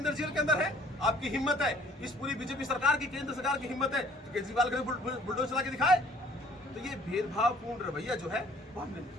जेल के अंदर है। आपकी हिम्मत है, इस पूरी बीजेपी सरकार की, केंद्र सरकार की हिम्मत है तो केजरीवाल के बुलडोजर चला के दिखाए। तो ये भेदभावपूर्ण रवैया जो है बहुत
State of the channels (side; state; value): both; normal; correlation 0.56